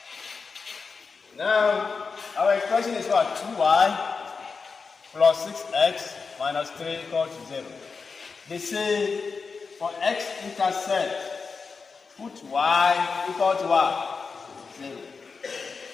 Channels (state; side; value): quieter; right; 4.9 dB